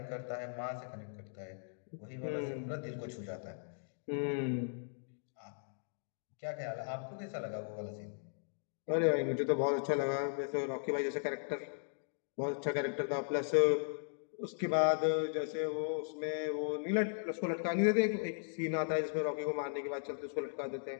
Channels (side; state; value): right; silent; digital silence